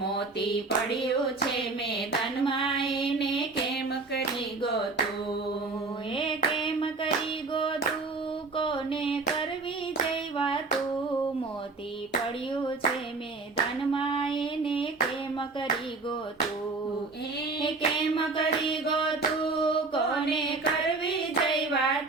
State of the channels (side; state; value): left; quieter; 3.7 dB